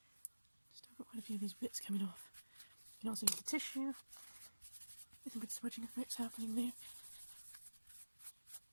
Just have got quite a few of these bits coming off. You can also use the tissue. There's some good smudging effects happening there.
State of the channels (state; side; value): inverted; both; correlation -1.00